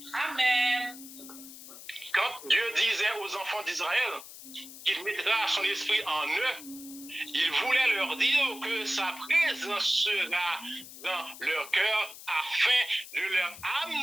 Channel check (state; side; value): noise; left; hiss, 15 dB below the sound